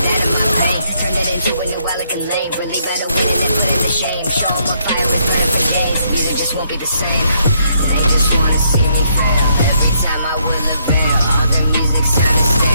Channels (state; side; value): inverted; both; correlation -0.72